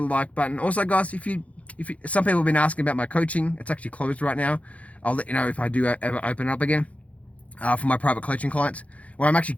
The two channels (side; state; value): right; late; 0.066 ms